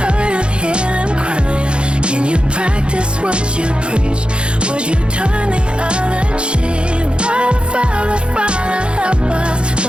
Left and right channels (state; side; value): late; left; 0.055 ms